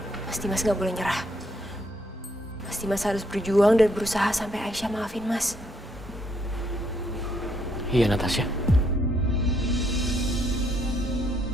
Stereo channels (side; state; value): both; normal; correlation 0.72